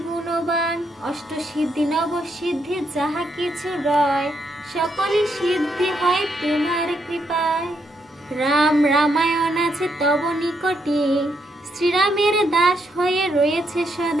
গুণবান। অষ্ট সিদ্ধি নব সিদ্ধি যাহা কিছু রয়, সকলই সিদ্ধি হয় তোমার কৃপায়। রাম রামায়ণ আছে তব নিকটে, শ্রীরামের দাস হয়ে রয়েছে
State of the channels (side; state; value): both; normal; correlation 0.77